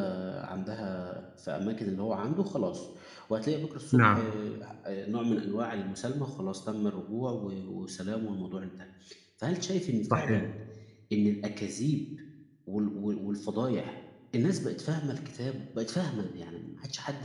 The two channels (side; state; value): both; identical; correlation 1.00